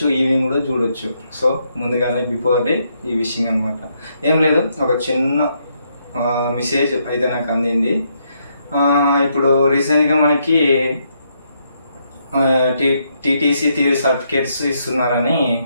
ఈవినింగ్ కూడా చూడొచ్చు. సో ముందుగానే బిఫోర్ డే ఈ విషయం అనమాట. ఏం లేదు, ఒక చిన్న మెసేజ్ అయితే నాకు అందింది. ఇప్పుడు రీసెంట్గా మనకి టీటీసీ థియరీ సర్టిఫికేట్స్ ఇస్తున్నారని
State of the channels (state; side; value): inverted; both; correlation -0.76